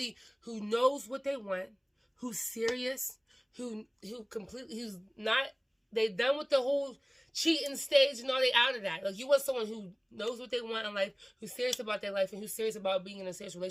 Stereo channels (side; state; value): both; identical; correlation 1.00